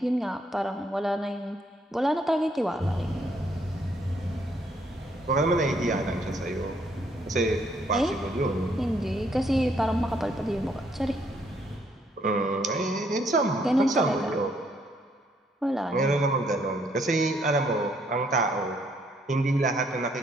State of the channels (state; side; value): normal; both; correlation 0.70